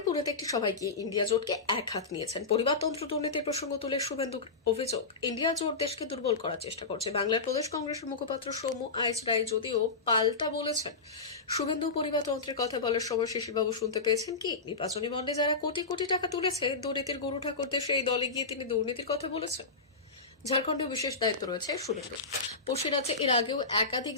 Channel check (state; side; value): quieter; right; 4.0 dB